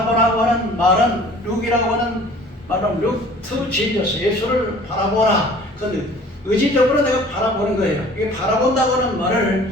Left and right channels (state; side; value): normal; both; correlation 0.49